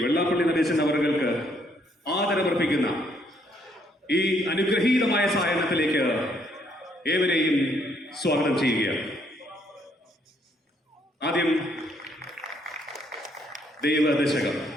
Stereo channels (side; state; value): both; normal; correlation 0.69